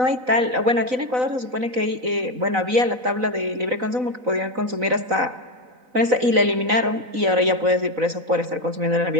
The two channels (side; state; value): left; late; 4.0 ms